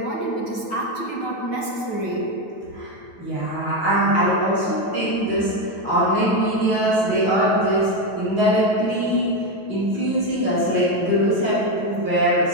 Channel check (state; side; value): late; right; 9.1 ms